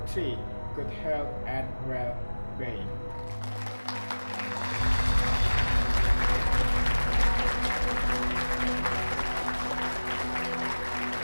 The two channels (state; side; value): inverted; both; correlation -1.00